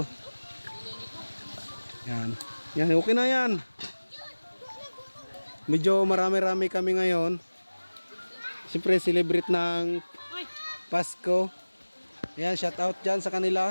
Yan, okay na yan. Medyo marami-rami kami ngayon. Siyempre celebrate ng Pasko. Ayan, shout out dyan sa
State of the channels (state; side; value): inverted; both; correlation -1.00